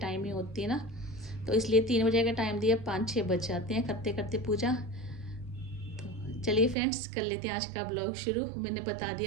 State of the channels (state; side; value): drops out; left; at 6.8 s